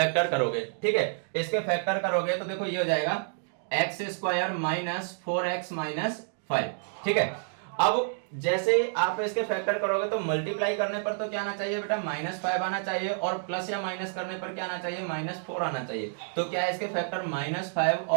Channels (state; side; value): silent; left; digital silence